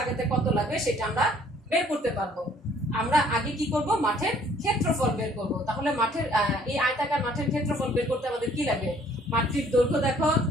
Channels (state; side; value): normal; both; correlation 0.59